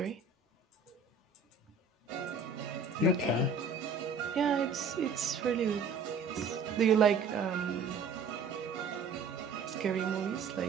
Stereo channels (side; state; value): left; quieter; 4.8 dB